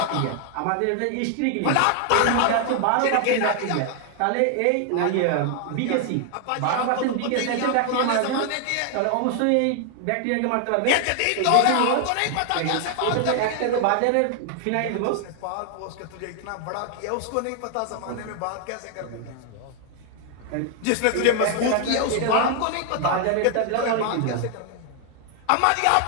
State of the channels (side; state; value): both; different; correlation 0.00